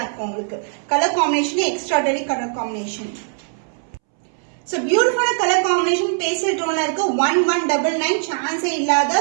இருக்கும் உங்களுக்கு. Colour combination extraordinary colour combination. So beautiful color combination pastel tone இருக்கு. 1199 சான்ஸே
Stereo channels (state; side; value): silent; left; 65 dB below the other